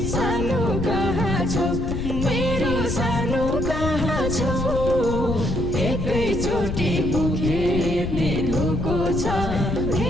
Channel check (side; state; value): left; noise; rumble, 3 dB below the sound